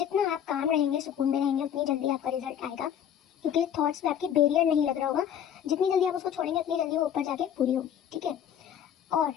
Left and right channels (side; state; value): right; quieter; 9.4 dB